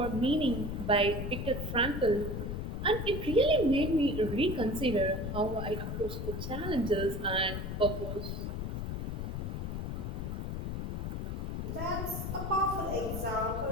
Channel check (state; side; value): noise; left; rumble, 3 dB below the sound